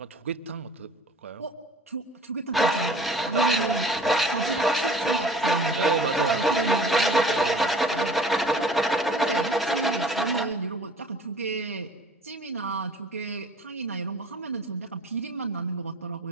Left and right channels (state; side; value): normal; both; correlation 0.48